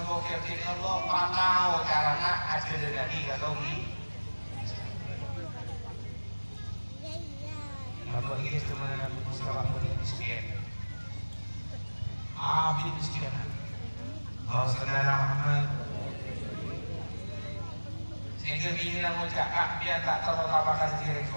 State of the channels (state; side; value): inverted; both; correlation -1.00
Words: ke Allah pantau caranya aja dari kata ini. Apa ini cuma Nabi Musa waktu miskin. Abid miskin. Saudara Muhammad. Sehingga ini namun cakap dia tak terutamakan diri